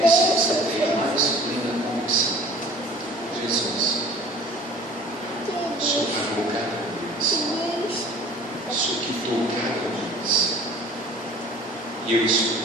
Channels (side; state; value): both; normal; correlation 0.48